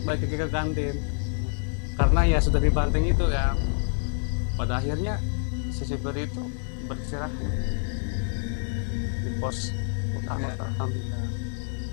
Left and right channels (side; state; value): right; silent; digital silence